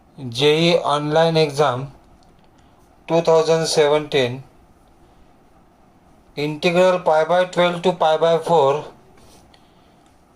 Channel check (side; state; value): both; identical; correlation 1.00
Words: JEE online exam 2017. Integral pi by 12 to pi by 4